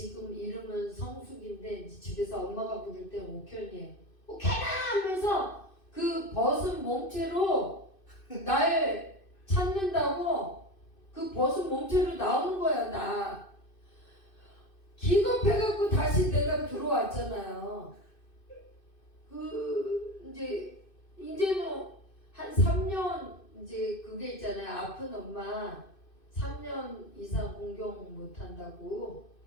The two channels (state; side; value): late; right; 2.6 ms